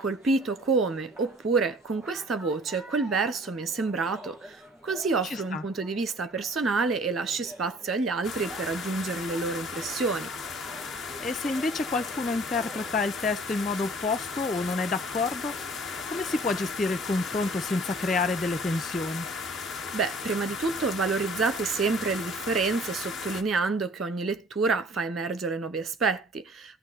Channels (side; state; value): both; normal; correlation 0.52